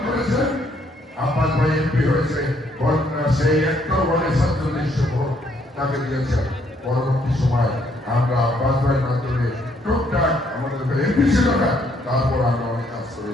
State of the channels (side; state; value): both; normal; correlation 0.69